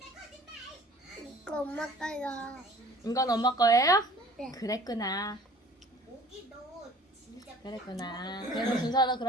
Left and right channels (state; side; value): normal; both; correlation 0.49